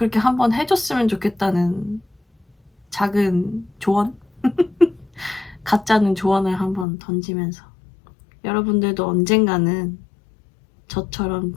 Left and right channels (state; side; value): drops out; right; at 6.9 s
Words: 한번 해줬으면 좋겠다는 작은 조언? 가짜는 조언을 한번 던지면서 여러분들도 언젠가는 저처럼